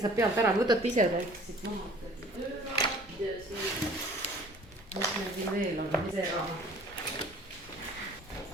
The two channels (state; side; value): normal; both; correlation 0.50